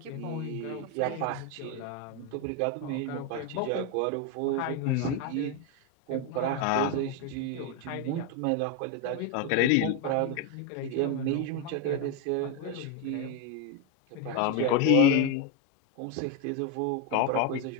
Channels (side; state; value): both; different; correlation 0.02